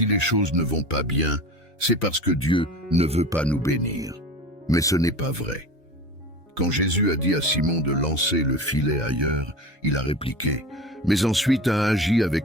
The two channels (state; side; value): normal; both; correlation 0.33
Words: les choses ne vont pas bien, c'est parce que Dieu ne veut pas nous bénir. Mais ce n'est pas vrai. Quand Jésus a dit à Simon de lancer le filet ailleurs, il a répliqué, mais ensuite a agi